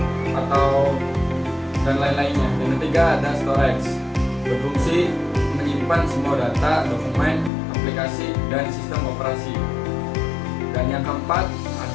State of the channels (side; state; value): right; drops out; at 7.5 s